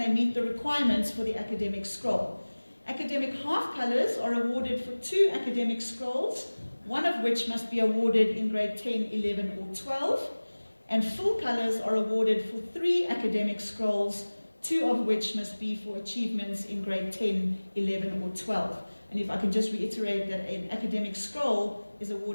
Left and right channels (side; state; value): both; inverted; correlation -1.00